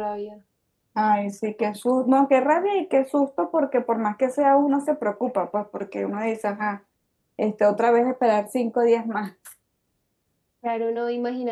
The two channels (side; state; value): both; identical; correlation 1.00